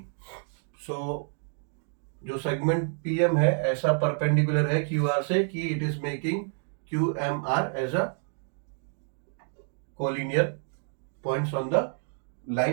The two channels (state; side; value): silent; left; 59 dB below the other